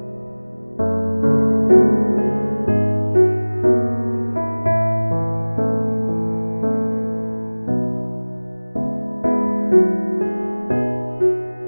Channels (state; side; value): inverted; both; correlation -1.00